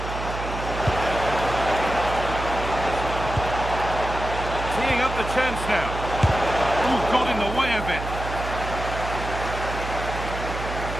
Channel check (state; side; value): noise; right; hum, 7 dB below the sound